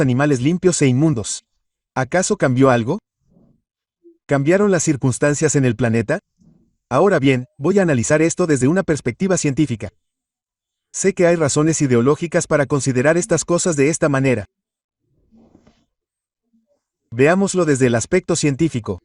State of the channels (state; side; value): identical; both; correlation 1.00